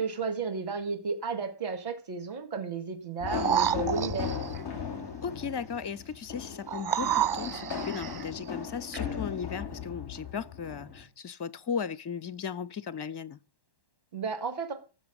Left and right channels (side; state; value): right; late; 1.1 ms